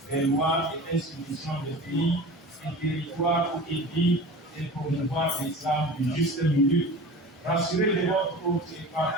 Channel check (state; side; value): normal; both; correlation 0.36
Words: des lois et institutions des pays et territoires où il vit et promouvoir l'islam du juste milieu. Rassurez de votre haute et